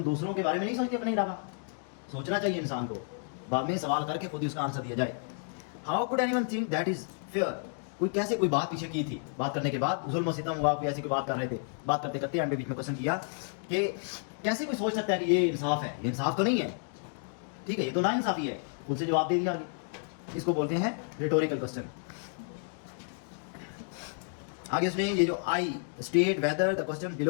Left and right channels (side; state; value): right; silent; 57 dB below the other